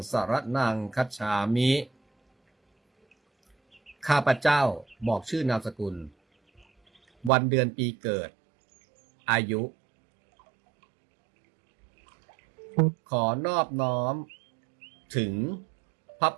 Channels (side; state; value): left; drops out; at 7.3 s